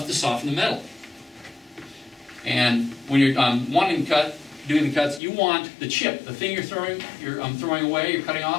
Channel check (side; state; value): right; drops out; at 5.2 s